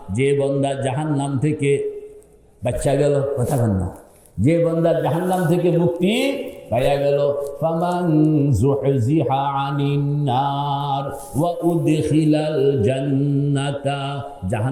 যে বান্দা জাহান্নাম থেকে বাঁচা গেল। কথা বল না, যে বান্দা জাহান্নাম থেকে মুক্তি পাইয়া গেল, ফামান যুহজিহা আনিন নার ওয়া উদখিলাল জান্নাতা,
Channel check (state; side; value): identical; both; correlation 1.00